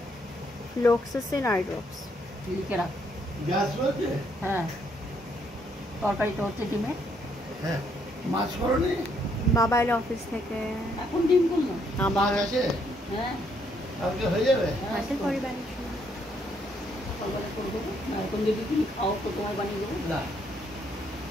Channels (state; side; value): normal; both; correlation 0.71